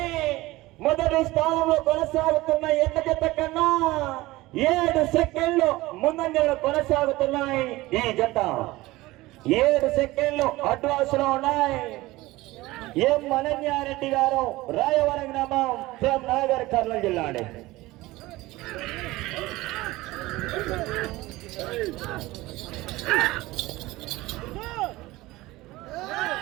మొదటి స్థానంలో కొనసాగుతున్న ఎన్న జత కన్నా 7 సెకండ్లు ముందంజలో కొనసాగుతున్నాయి. ఈ జత 7 సెకండ్లు అడ్వాన్స్ లో ఉన్నాయి. ఎం అనన్యారెడ్డి గారు, రాయవరం గ్రామం, సేమ్ నగర్, కర్నూలు జిల్లా అండి.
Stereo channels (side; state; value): left; quieter; 19.1 dB